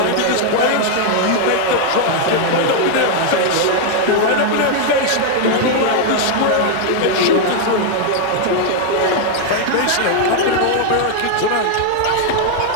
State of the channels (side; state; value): both; different; correlation 0.00